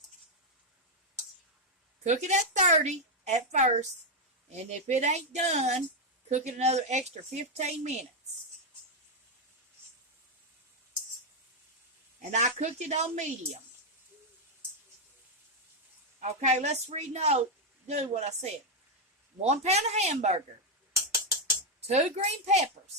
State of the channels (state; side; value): normal; both; correlation 0.02